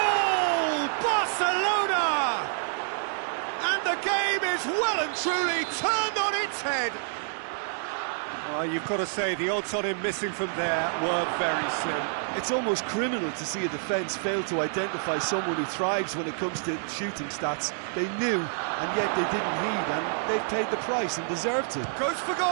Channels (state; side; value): silent; left; digital silence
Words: Barcelona! And the game is well and truly turned on its head. Well, you've got to say the odds on him missing from there were very slim. It's almost criminal to see a defence fail to identify someone who thrives when it comes to shooting stats. They knew, and yet they didn't heed, and they've paid the price and deserved to. Goes for